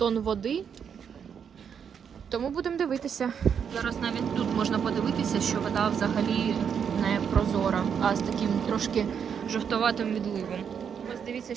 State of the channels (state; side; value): quieter; left; 7.4 dB